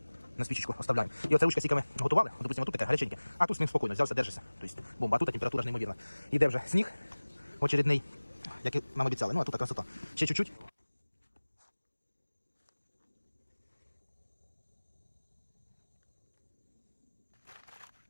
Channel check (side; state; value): both; inverted; correlation -1.00